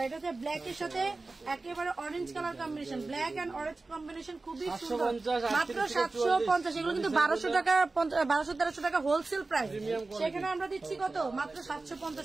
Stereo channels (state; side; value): quieter; left; 3.5 dB